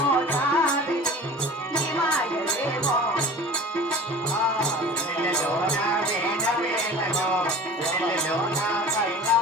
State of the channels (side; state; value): both; normal; correlation 0.40